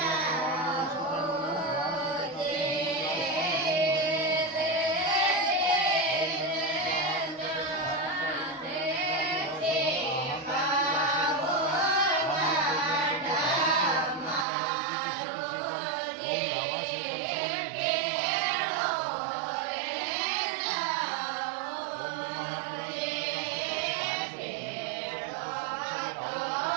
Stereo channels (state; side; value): drops out; left; at 14.5 s